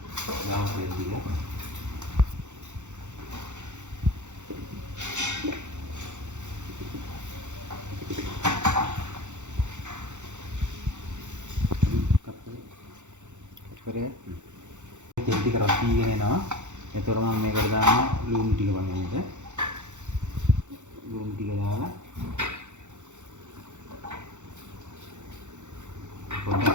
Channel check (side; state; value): left; late; 0.84 ms